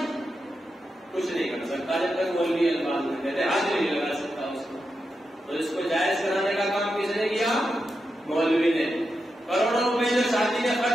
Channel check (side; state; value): both; normal; correlation 0.88